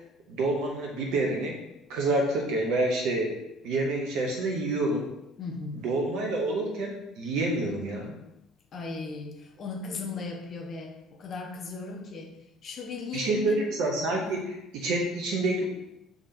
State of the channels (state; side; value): normal; both; correlation 0.51